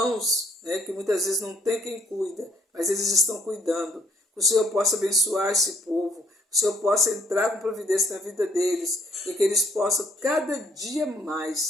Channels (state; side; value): normal; both; correlation 0.65